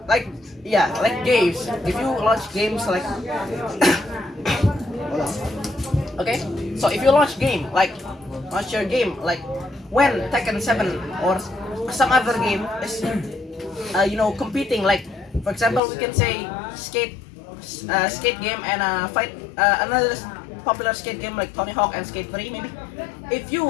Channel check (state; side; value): drops out; right; at 15.8 s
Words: Like like games. If you launch games like okay, so if you launch your game like when Tekken 7 or some other game is competing, like for example we can say skate game and fight another popular skate game like Tony Hawk and Skate 3 maybe. If